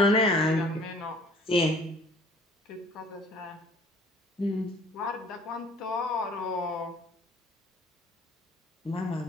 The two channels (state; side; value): normal; both; correlation 0.53